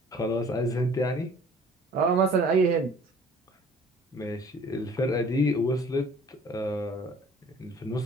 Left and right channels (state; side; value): normal; both; correlation 0.52